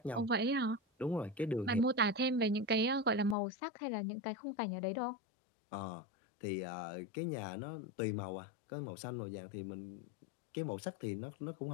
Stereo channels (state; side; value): drops out; right; at 3.4 s